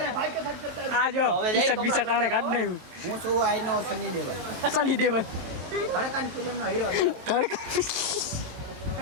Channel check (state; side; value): late; left; 23 ms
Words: આ જો ટી-શર્ટ બીશર્ટ આણે કાઢ નાખ્યું. હું છું આઈનો સની દેવલ, સની દેવલ ધડકન ફિલ્મનો હીરો.